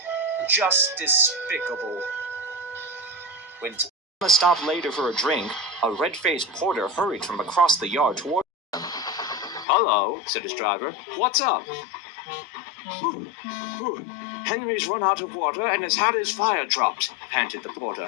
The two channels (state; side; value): drops out; right; at 9.7 s